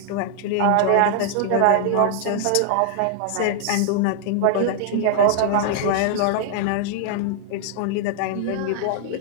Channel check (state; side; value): different; both; correlation -0.01